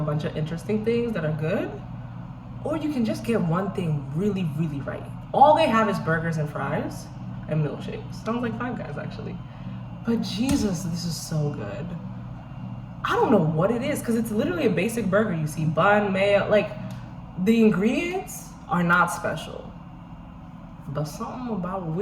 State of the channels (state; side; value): identical; both; correlation 1.00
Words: bunch of interesting things that are good, or you can just get one thing really, really right. All they have is burgers and fries and milkshakes. Sounds like Five Guys, actually. But Jesus, this is so good. I don't know what it is, because it's literally a basic burger. You see bun, mayo, like the ingredients are not special. But something about